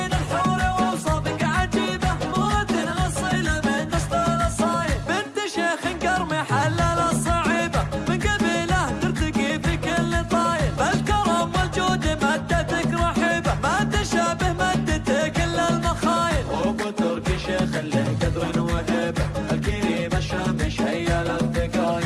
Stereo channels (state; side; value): identical; both; correlation 1.00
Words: الحور وأوصافك عجيبة، مرة أصيلة من نسل الأصايل، بنت شيخ قرمي حلل الصعيبة، من قبيله ترتقي في كل طايل، فالكرم والجود مدتك رحيبة، ما تشابه مدتك إلا المخايل، وابو تركي شيخ له قدر وهيبة، الكريم الشام شيل